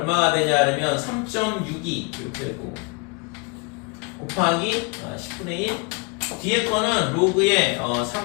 되냐 그러면 3.62 이렇게 될 거고 곱하기 10분의 1 뒤에 거는 로그의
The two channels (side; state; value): right; quieter; 31.1 dB